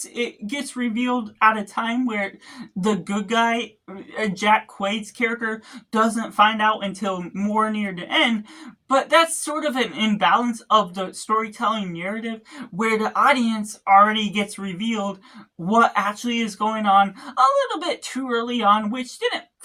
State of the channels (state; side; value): identical; both; correlation 1.00